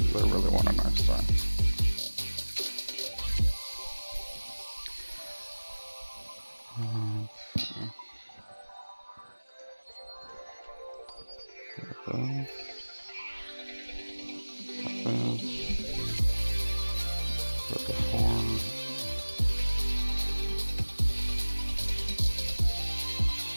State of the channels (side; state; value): both; inverted; correlation -1.00